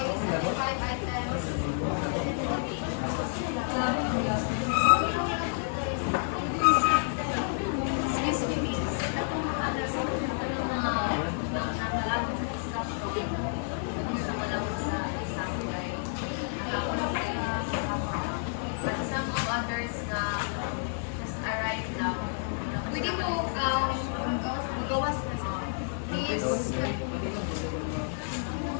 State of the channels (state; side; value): silent; right; digital silence